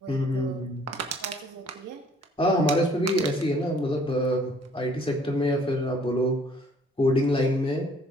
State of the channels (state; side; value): normal; both; correlation 0.59